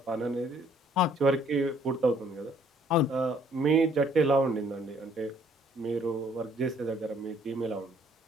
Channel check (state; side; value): normal; both; correlation 0.62